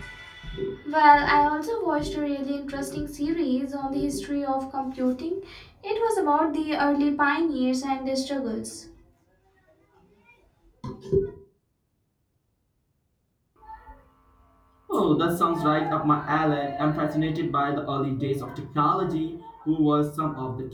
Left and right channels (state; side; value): identical; both; correlation 1.00